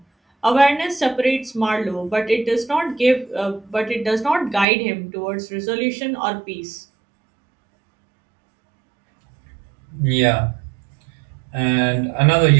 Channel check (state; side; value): drops out; left; at 4.7 s